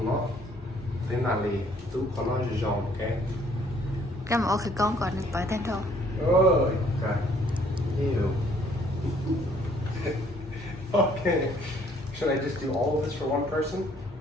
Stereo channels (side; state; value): both; normal; correlation 0.63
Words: nó thế mà lý tú con nó giòn ok. Cái mà khử con còn được bởi tên thôi. Ôi, ok. Ew. Okay. Should I just do all of this for one person?